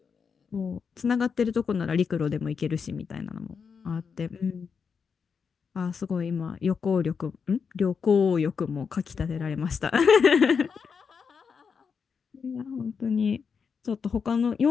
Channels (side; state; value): right; quieter; 6.0 dB